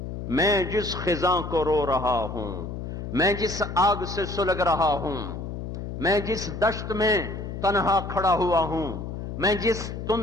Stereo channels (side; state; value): left; noise; hum, 7 dB below the sound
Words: میں جس خزاں کو رو رہا ہوں، میں جس آگ سے سلگ رہا ہوں، میں جس دشت میں تنہا کھڑا ہوا ہوں، میں جس